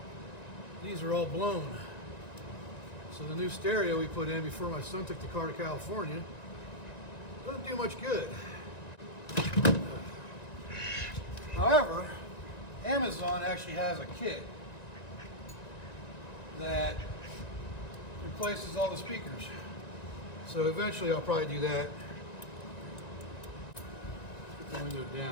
these are all blown. So the new stereo we put in before my son took the car to California doesn't do much good. However, Amazon actually has a kit that replaces all the speakers. So eventually I'll probably do that. Put the window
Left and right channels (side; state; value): right; late; 1.9 ms